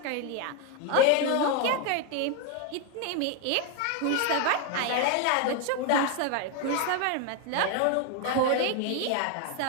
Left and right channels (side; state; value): both; different; correlation 0.01